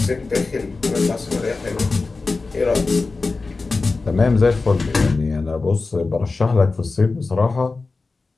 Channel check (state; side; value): quieter; right; 3.8 dB